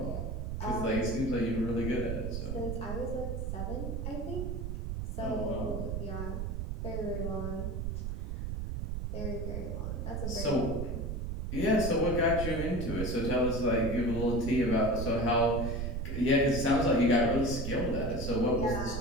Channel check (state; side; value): noise; right; rumble, 3 dB below the sound